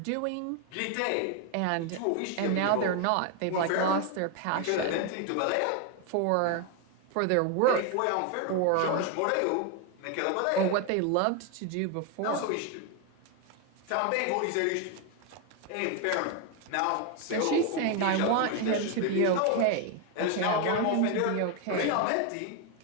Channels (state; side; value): different; both; correlation 0.01